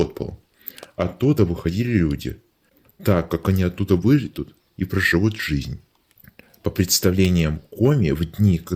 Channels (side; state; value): both; identical; correlation 1.00